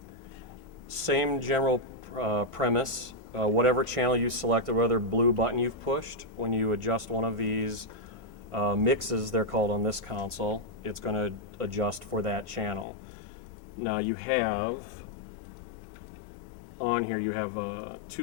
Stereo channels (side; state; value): right; drops out; at 12.9 s